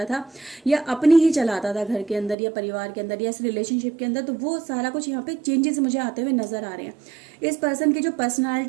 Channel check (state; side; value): drops out; left; at 2.4 s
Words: था, या अपनी ही चलाता था घर के अंदर या परिवार के अंदर या इस रिलेशनशिप के अंदर, तो वो सारा कुछ यहाँ पे चेंजेस मुझे आते हुए नज़र आ रहे हैं। इस पर्सन की जो